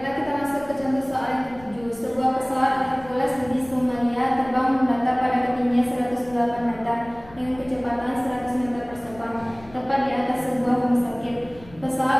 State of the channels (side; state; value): left; noise; rumble, 22 dB below the sound